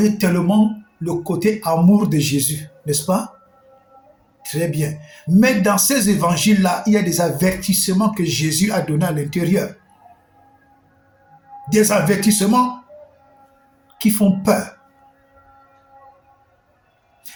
tellement le côté amour de Jésus, n'est-ce pas? Très bien. Mais dans ces évangiles-là, il y a des avertissements que Jésus a donnés à l'intérieur. Des avertissements qui font peur.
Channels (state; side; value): identical; both; correlation 1.00